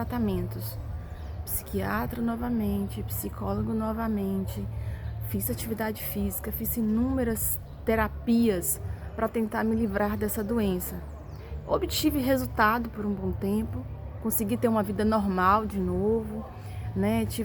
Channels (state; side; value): identical; both; correlation 1.00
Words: Psiquiatra novamente, psicólogo novamente, fiz atividade física, fiz inúmeras terapias para tentar me livrar dessa doença. Obtive resultado por um bom tempo, consegui ter uma vida normal de novo, né?